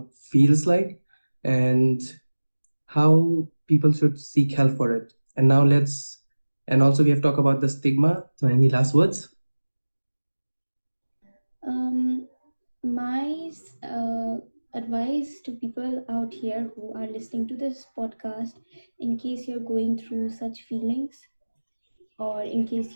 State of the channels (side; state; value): both; inverted; correlation -1.00